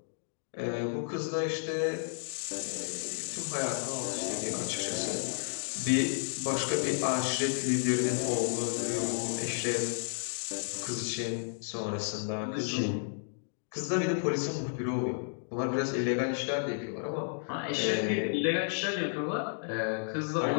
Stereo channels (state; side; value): silent; right; digital silence